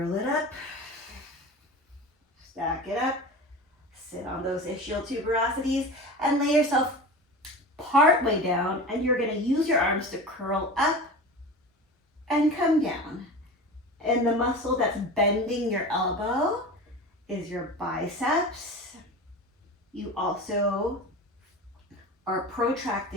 it up, stack it up, sit on those ischial tuberosities, and lay yourself part way down, and you're gonna use your arms to curl up and come down. And the muscle that's bending your elbow is your biceps. You also are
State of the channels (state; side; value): normal; both; correlation 0.31